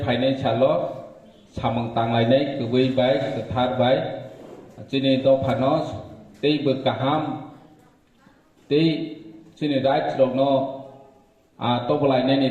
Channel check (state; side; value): identical; both; correlation 1.00